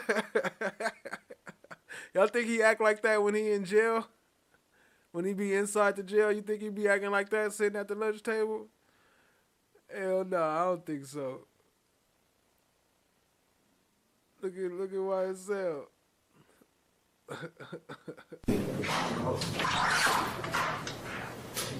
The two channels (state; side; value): identical; both; correlation 1.00